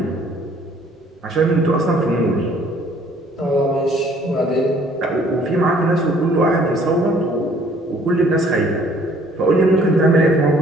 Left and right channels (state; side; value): normal; both; correlation 0.59